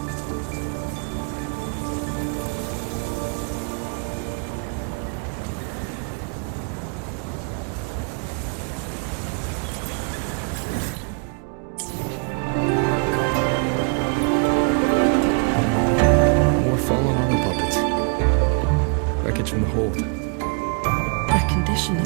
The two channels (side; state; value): left; quieter; 37.4 dB